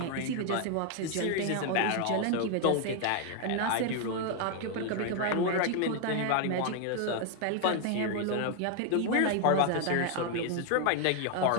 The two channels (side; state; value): both; different; correlation 0.00